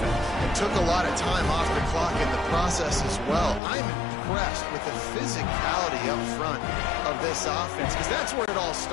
It took a lot of time off the clock in the process as well. I'm impressed with the physicality up front of this offense because that's where it all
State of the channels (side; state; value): right; drops out; at 3.6 s